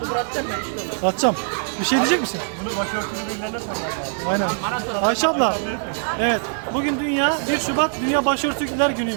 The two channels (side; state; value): left; silent; 61 dB below the other